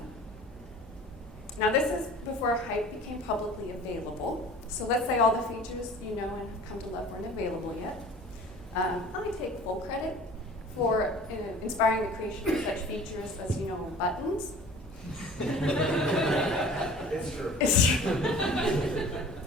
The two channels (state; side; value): noise; right; hum, 21 dB below the sound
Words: Now this is before Hype became publicly available. So let's say all the features you know and have come to love weren't available yet. I take full credit for inspiring the creation of such features as, buttons. It's true. It's true.